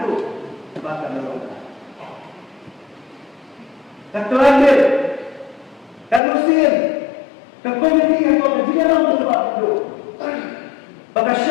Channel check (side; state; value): right; drops out; at 6.2 s